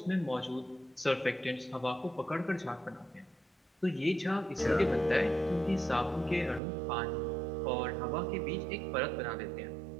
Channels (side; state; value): left; drops out; at 6.6 s